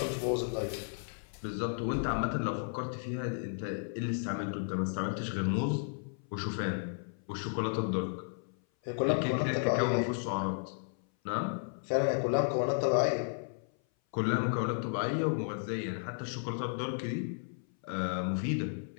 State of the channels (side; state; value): right; silent; 55 dB below the other